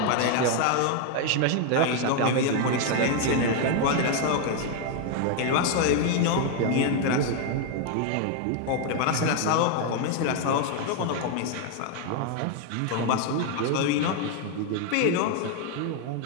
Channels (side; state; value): both; different; correlation 0.01